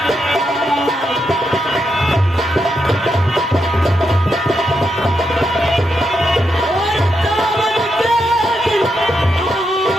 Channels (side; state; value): both; normal; correlation 0.82